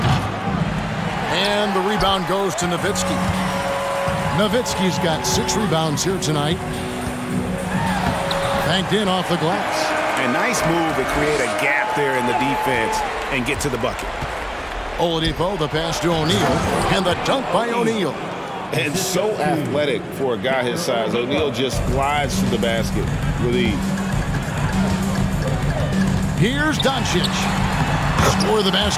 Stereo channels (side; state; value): both; identical; correlation 1.00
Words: And the rebound goes to Nowitzki. Nowitzki's got 6 rebounds here tonight. Banked in off the glass. A nice move to create a gap there in the defense and get to the bucket. Oladipo, the pass to O'Neal, and the dunk by O'Neal. And so athletic for a guy his size. O'Neal just glides to the basket with ease. Here's Doncic. Score of the